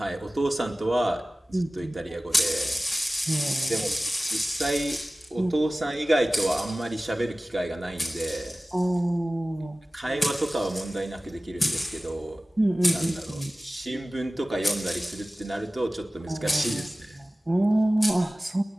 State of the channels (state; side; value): normal; both; correlation 0.97